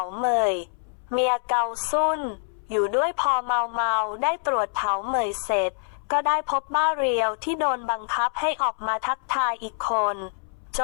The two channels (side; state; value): right; silent; 62 dB below the other